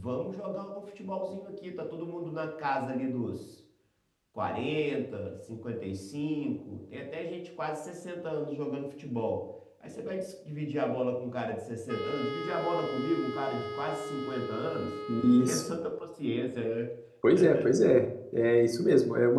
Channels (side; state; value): both; identical; correlation 1.00